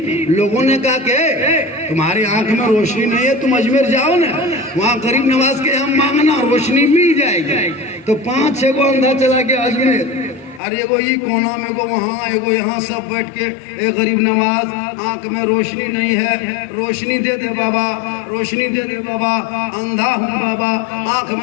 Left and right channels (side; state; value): right; drops out; at 10.6 s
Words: लोगों ने कहा कि तुम्हारी आंख में रोशनी नहीं है, तुम अजमेर जाओ ना, वहाँ गरीब नवाज के यहाँ मांगना, रोशनी मिल जाएगी। तो 5-6 को अंधा चला गया अजमेर, और एगो ये कोना में, एगो वहाँ, एगो यहाँ, सब बैठ के ए गरीब नवाज, आंख में रोशनी नहीं है, रोशनी दे दे बाबा, रोशनी दे दे बाबा, अंधा हूँ बाबा, आंख